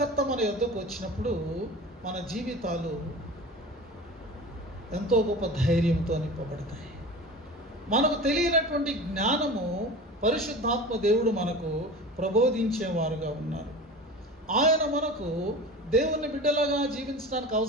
మన యొద్దకు వచ్చినప్పుడు మన జీవితాలు ఎంతో గొప్ప ధైర్యంతో నింపబడతాయి. మనకు తెలియనటువంటి జ్ఞానము పరిశుద్ధాత్మ దేవుడు మనకు ప్రబోధించేవారుగా ఉన్నారు. ఆయన మనకు దేవుని బిడ్డలుగా జీవించడానికి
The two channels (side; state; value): both; normal; correlation 0.34